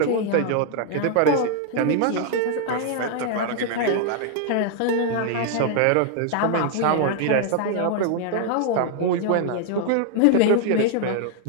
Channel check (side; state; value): both; different; correlation 0.00